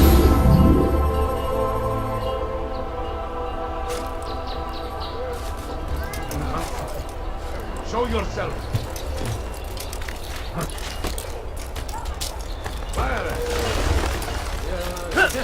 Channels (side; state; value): both; identical; correlation 1.00